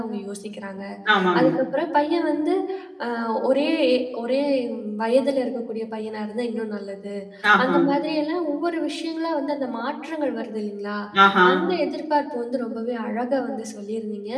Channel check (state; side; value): identical; both; correlation 1.00